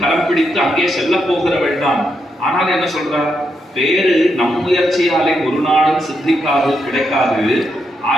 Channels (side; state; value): both; normal; correlation 0.81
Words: கரம் பிடித்து அங்கே செல்ல போகிறவள் தான். ஆனால் என்ன சொல்றார்? பேரு நம் முயற்சியாலே ஒரு நாளும் சித்திக்காது, கிடைக்காது.